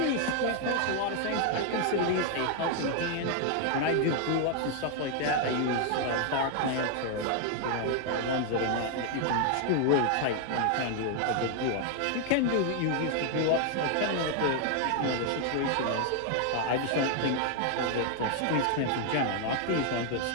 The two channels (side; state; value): both; different; correlation 0.00